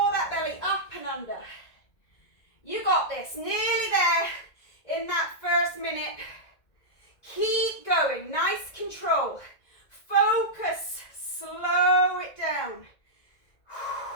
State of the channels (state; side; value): late; right; 2.0 ms